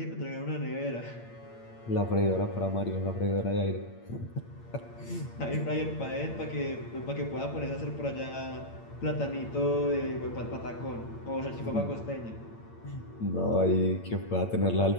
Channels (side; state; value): right; late; 8.8 ms